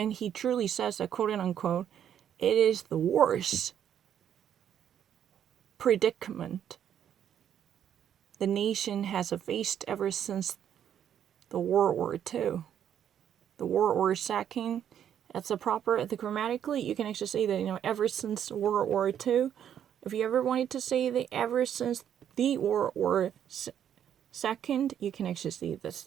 he truly says that, quote unquote, it is the worst predicament the nation has faced ever since the World War II. The World War II, that's the grammatically, you can actually say that, ever since World War II. If you ever wanted to say that ever since the World War II, you can actually see this.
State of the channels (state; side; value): quieter; left; 9.6 dB